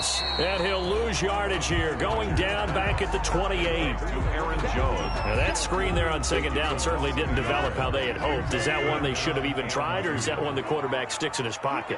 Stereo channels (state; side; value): identical; both; correlation 1.00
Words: And he'll lose yardage here. Going down back at the 28. Aaron Jones. Now that screen there on second down certainly didn't develop how they had hoped. Is that one they should have even tried, or is that one the quarterback sticks in his